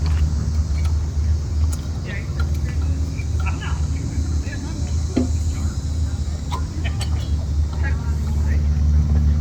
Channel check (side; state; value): both; identical; correlation 1.00